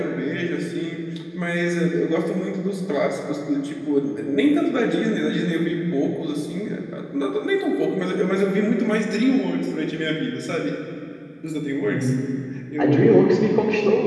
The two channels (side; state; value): both; identical; correlation 1.00